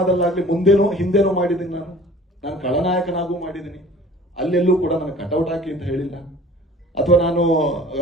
ಮುಂದೇನೋ ಹಿಂದೇನೋ ಮಾಡಿದ್ದೀನಿ. ನಾನು ಖಳನಾಯಕನಾಗೂ ಮಾಡಿದ್ದೀನಿ. ಅಲ್ಲೆಲ್ಲೂ ಕೂಡ ನನಗೆ ಕಟೌಟ್ ಹಾಕಿ ಅಂತ ಹೇಳಿಲ್ಲ. ಅಥವಾ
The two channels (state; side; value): normal; both; correlation 0.47